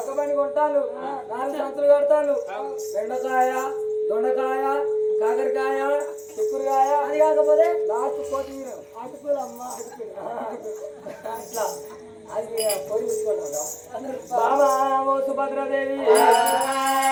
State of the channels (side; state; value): both; identical; correlation 1.00